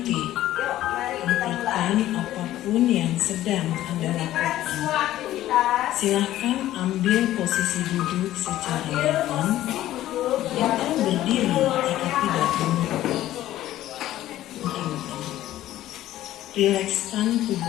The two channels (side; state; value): right; quieter; 14.0 dB